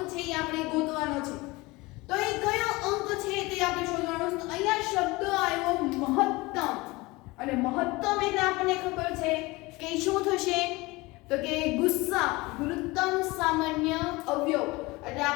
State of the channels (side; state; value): right; quieter; 22.5 dB